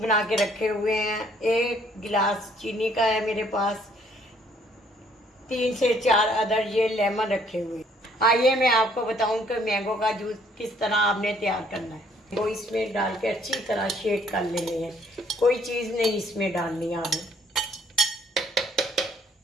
के रखे हुए हैं। 1 गिलास चीनी का है मेरे पास। 3 से 4 अदर ये लेमन रखे हुए हैं। आइए मैं आपको बताऊं कि मैंगो का जूस किस तरह आपने तैयार करना है। वो इसमें डाल के अच्छी तरह शेक कर लेने हैं, कोई चीज़ नहीं इसमें डालनी है आपने।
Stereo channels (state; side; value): normal; both; correlation 0.64